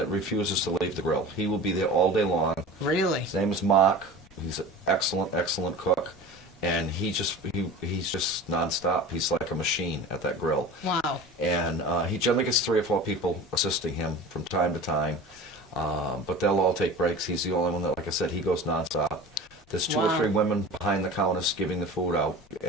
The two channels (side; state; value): left; noise; rumble, 28 dB below the sound